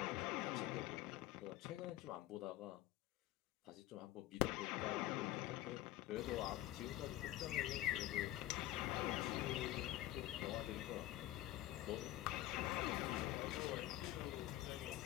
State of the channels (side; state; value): right; quieter; 15.1 dB